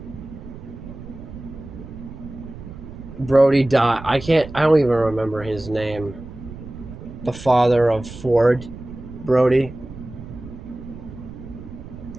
Brody died. I don't even remember his name. The father of Ford, Brody.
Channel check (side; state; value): right; noise; rumble, 14 dB below the sound